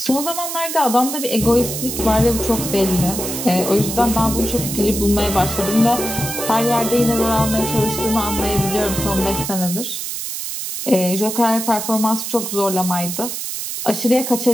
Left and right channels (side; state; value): right; noise; hiss, 5 dB below the sound